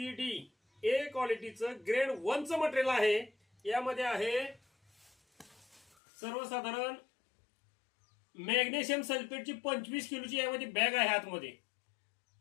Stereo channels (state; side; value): drops out; right; at 5.9 s